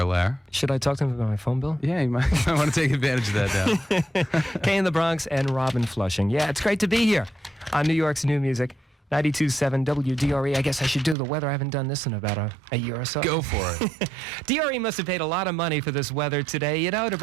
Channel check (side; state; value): left; drops out; at 11.2 s